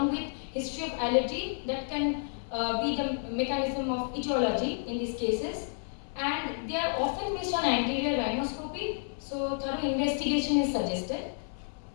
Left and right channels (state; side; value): silent; right; 57 dB below the other